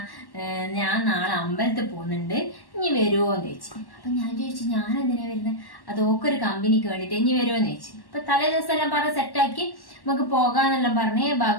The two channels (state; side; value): late; right; 1.1 ms